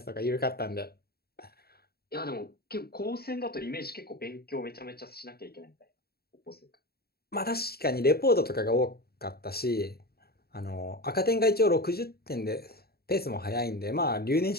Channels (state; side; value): late; right; 0.45 ms